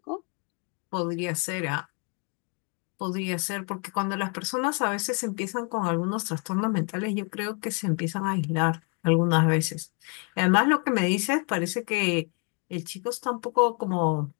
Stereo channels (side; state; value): right; quieter; 36.0 dB